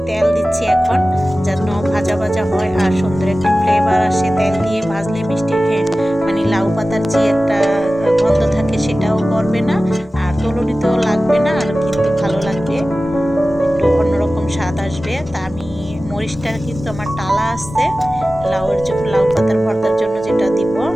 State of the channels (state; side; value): normal; both; correlation 0.96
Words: তেজি একটা গন্ধ থাকে সেটাও করবে না, আর তলুনিতেও লাগবে না, আর কিন্তু ভালো লাগবে, একটু অন্যরকম স্বাদ আসবে। তা আমি মরিচটা কিন্তু আমার টালা আছে, লাউ পাতার ভর্তার জন্য যেটা দিব